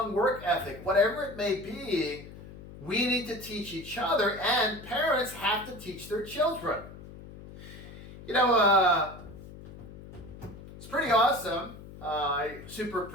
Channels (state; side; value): noise; left; hum, 16 dB below the sound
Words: work ethic. Whatever it may be, we need to teach each other, and parents have to teach their children. It's pretty awesome. I super